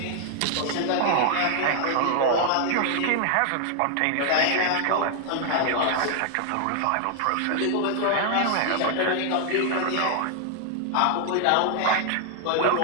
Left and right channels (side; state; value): both; different; correlation 0.00